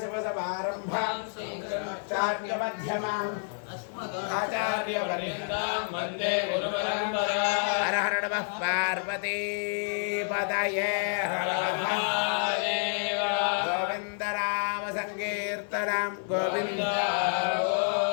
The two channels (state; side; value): silent; right; digital silence